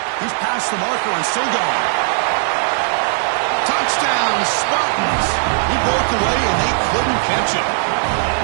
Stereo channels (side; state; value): left; silent; 57 dB below the other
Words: He's past the marker and still going. Touchdown, Spartans. He broke away and they couldn't catch him.